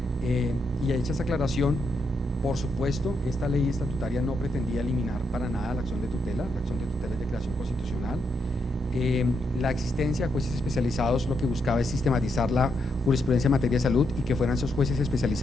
y hecha esa aclaración, por supuesto, esta ley estatutaria no pretendía eliminar para nada la acción de tutela. La acción de tutela es de creación constitucional. La existencia de jueces especializados lo que buscaba es sistematizar la jurisprudencia en materia de salud y que fueran esos jueces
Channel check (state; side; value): normal; both; correlation 0.80